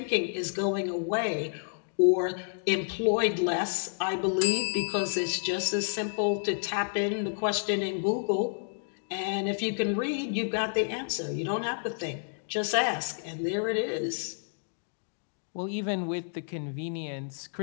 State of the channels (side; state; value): right; silent; digital silence